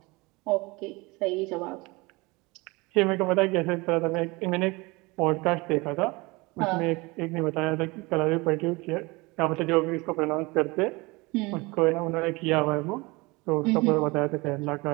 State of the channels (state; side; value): quieter; left; 24.4 dB